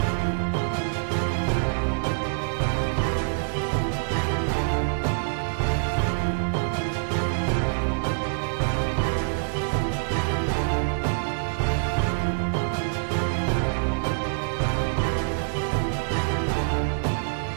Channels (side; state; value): left; silent; digital silence